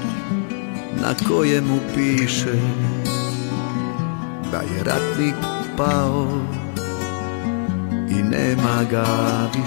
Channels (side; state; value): right; silent; digital silence